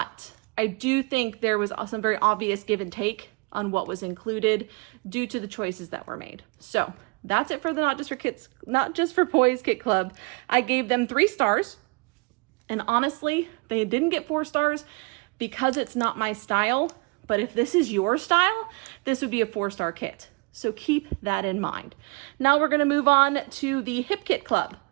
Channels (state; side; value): quieter; left; 30.0 dB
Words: I do think there was some very obvious give and take on what was included due to the choices that were made. So that's it for the Not Just for Boys Kit Club. I gave them 3 stars, and honestly, they didn't get 4 stars because it's not my style. But if this is your style, this would be a 4-star kit. So keep that in mind. Now we're gonna move on to the Hip Kit Club.